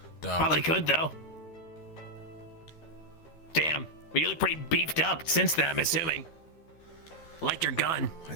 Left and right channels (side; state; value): right; late; 13 ms